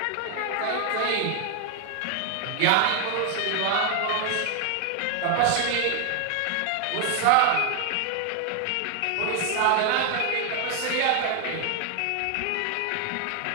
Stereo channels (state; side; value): different; both; correlation 0.00